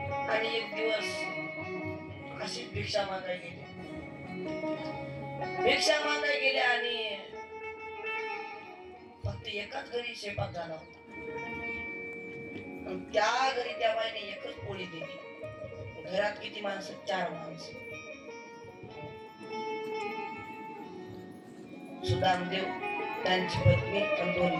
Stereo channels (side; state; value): both; identical; correlation 1.00